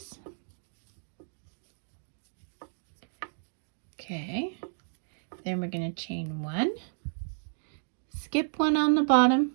Okay, then we're going to chain 1, skip 1 on the bottom,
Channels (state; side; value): silent; left; digital silence